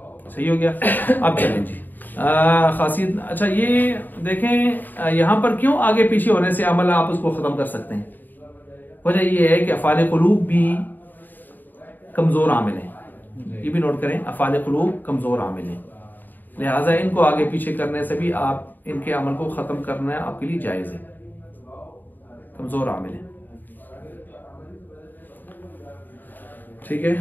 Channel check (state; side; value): late; right; 0.089 ms